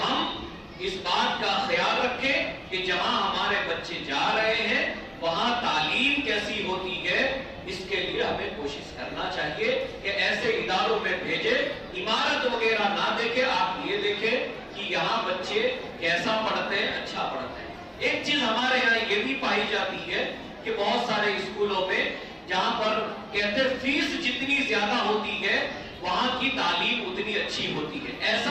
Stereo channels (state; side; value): identical; both; correlation 1.00